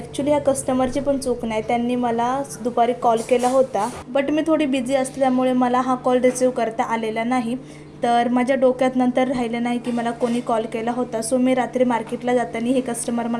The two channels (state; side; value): identical; both; correlation 1.00